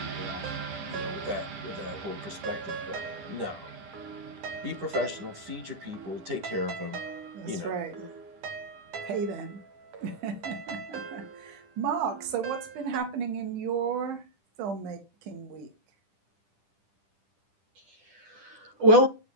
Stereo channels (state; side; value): late; left; 10 ms